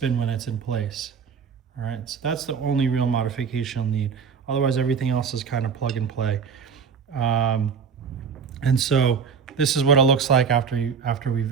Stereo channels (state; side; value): quieter; left; 6.3 dB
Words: when it's in place. All right, so that's the only real modification you'll need. Otherwise, everything else is kind of plug and play. And so this is what it looks like after we